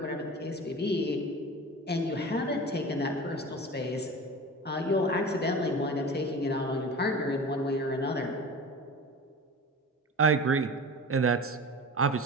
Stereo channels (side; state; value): both; normal; correlation 0.34